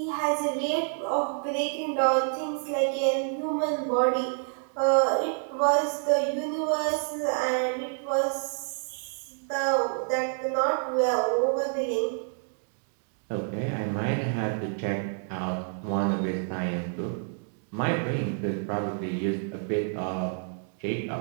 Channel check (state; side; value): silent; left; 59 dB below the other